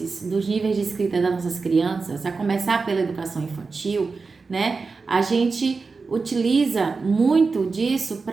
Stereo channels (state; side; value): quieter; left; 4.4 dB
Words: dos níveis de escrita das nossas crianças, a começar pela educação infantil, né? A gente utiliza muito disso